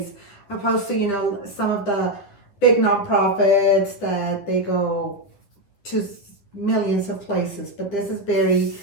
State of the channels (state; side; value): late; right; 10 ms